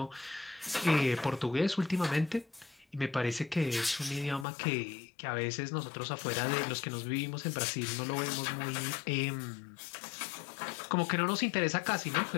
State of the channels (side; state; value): right; drops out; at 4.5 s